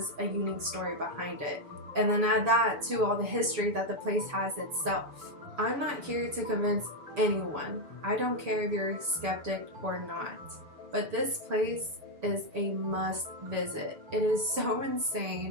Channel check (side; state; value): left; late; 6.9 ms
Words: a unique story behind it. And then add that to all the history that the place has itself. I'm not here to convince anyone. I don't care if you're a skeptic or not. But this place is a must visit. It is so